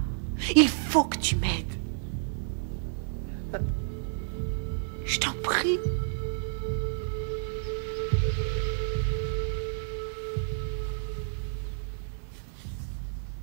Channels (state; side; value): silent; left; digital silence